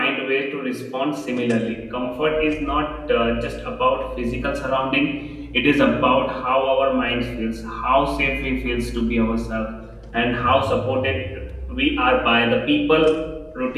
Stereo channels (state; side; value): identical; both; correlation 1.00